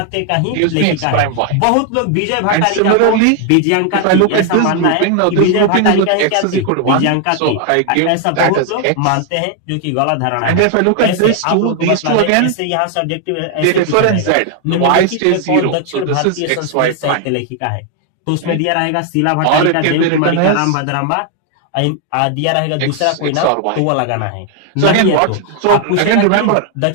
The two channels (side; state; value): both; different; correlation 0.00